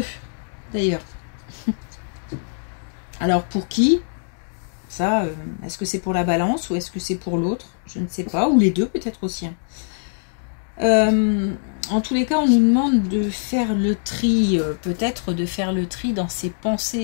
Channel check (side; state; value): right; silent; digital silence